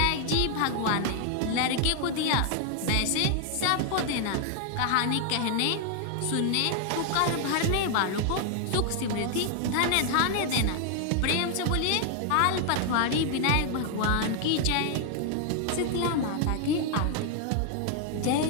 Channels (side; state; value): both; different; correlation 0.00